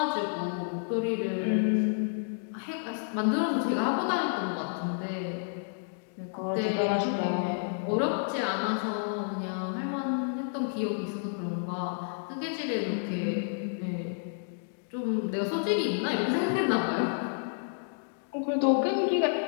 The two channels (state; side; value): silent; right; digital silence